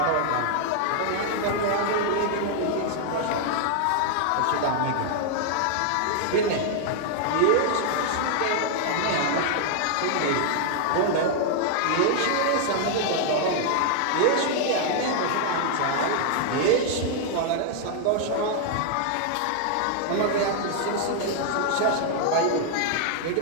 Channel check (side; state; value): both; different; correlation -0.01